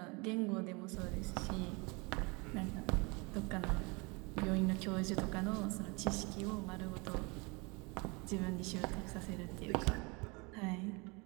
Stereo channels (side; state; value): left; quieter; 28.3 dB